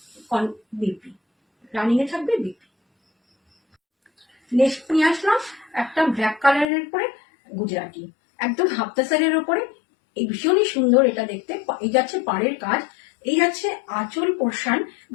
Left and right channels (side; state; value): right; drops out; at 6.7 s